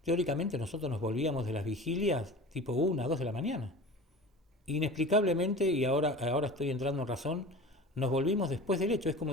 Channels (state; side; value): normal; both; correlation 0.37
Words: Teóricamente nosotros nos volvíamos de las vigilias tipo 1, 2 de la mañana. Inexplicablemente, y ahora estoy entrando en razón, nos volvimos después del hecho. Es como